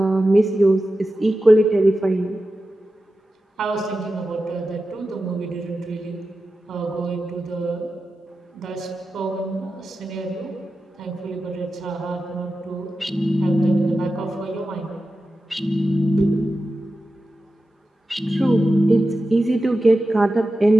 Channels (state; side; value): normal; both; correlation 0.92